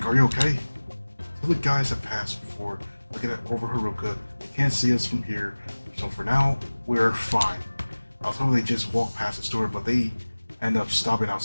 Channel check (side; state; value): both; inverted; correlation -1.00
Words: Are you okay? Till the guys have passed before looking at over Haruka. They can't see us from here, so for now, we're fine. I was hoping they just walk past the store, but they end up stopping